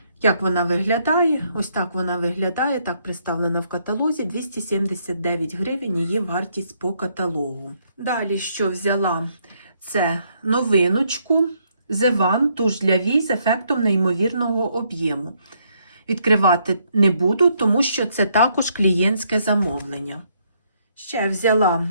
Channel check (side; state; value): both; inverted; correlation -0.72